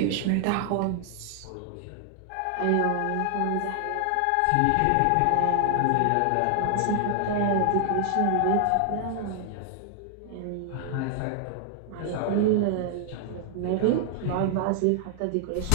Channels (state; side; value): different; both; correlation 0.00